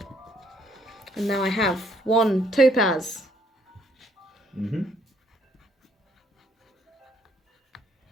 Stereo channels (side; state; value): both; normal; correlation 0.67